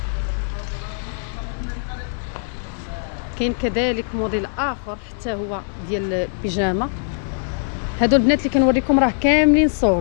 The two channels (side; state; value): right; silent; digital silence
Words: كاين كذلك موديل اخر حتى هو ديال البيجامه. هادو البنات اللي كنوريكم راه كاملين